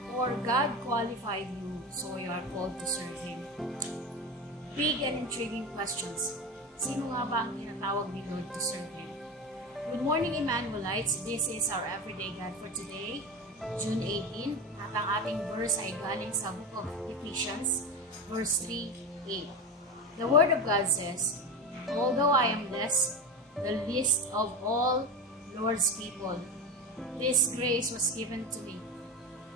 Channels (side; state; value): both; normal; correlation 0.21